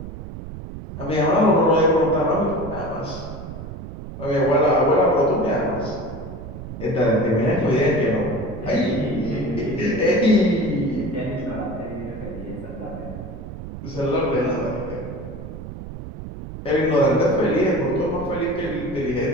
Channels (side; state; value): right; noise; rumble, 11 dB below the sound